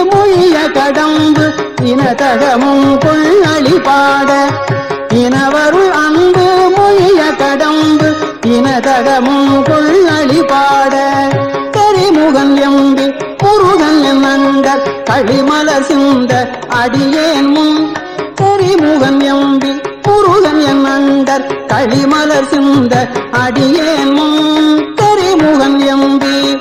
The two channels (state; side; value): identical; both; correlation 1.00